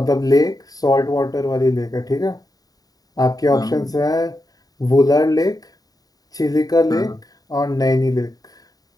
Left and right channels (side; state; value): right; late; 0.18 ms